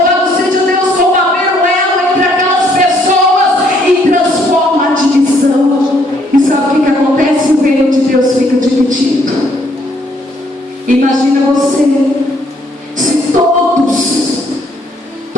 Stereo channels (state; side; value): normal; both; correlation 0.67